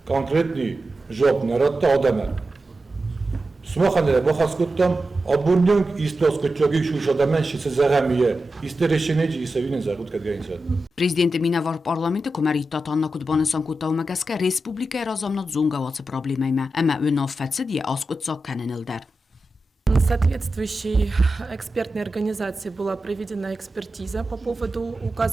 konkretni job naratta adamı. Smoxanere moxaskuttam abunyung istos kutchogi shushodamen shitsezagamiye isteresheneci isevinin zagut kadgainsa. Prezidenti Minavor parlamenti komerita Anna Kutbanısan kutavmagaska Respublika Razamnat Zungavatsı problemayma, ama önaffatsi diye askutsak kanenildar. Соответствующей экспертной организации была проведена экспертиза по поводу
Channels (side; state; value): both; normal; correlation 0.91